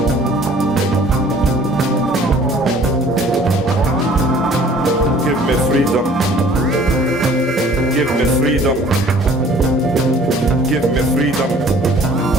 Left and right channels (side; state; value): both; normal; correlation 0.53